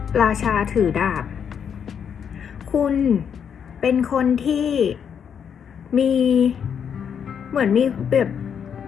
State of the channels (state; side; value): quieter; right; 7.7 dB